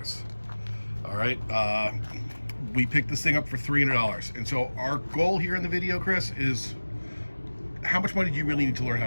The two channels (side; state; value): both; inverted; correlation -1.00